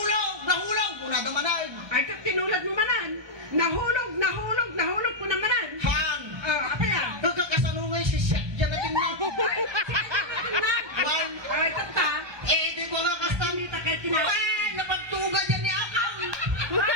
Kung nadaman ay. Ay, tinulad mo manan. Nahulog ko namanan. Han! Apa yan? Nagkakasanungay si Seth, dyan natin na. Ay, tata. Di ko nga kasta. Hindi ta kayo tinawag. Ay, napagtuga dyan ni Akang.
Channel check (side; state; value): left; late; 1.2 ms